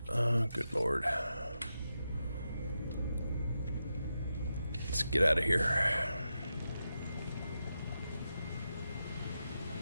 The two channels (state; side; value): inverted; both; correlation -0.88